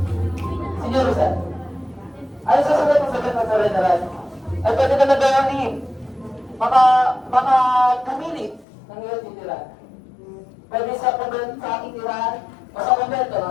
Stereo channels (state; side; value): drops out; right; at 8.7 s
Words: Senyor Rizal, ayon sa sagot ng sagot ng General, ay pwede na nagawin baka pumili ng iyong titirahan. Pwede sa aking tirahan o sa kumbento